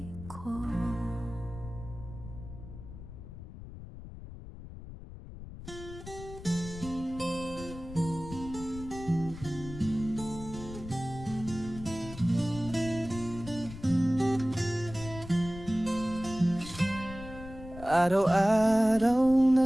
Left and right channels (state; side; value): noise; left; rumble, 13 dB below the sound